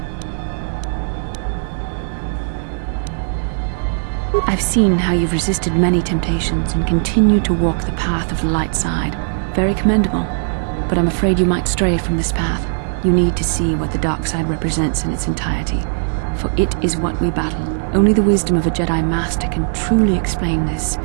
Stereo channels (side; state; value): left; silent; digital silence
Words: I've seen how you've resisted many temptations and continue to walk the path of the light side. Very commendable. But I'm afraid you might stray from this path. You need to see what the dark side represents in its entirety. For it is what we battle. Only the wisdom of a Jedi Master can truly explain this,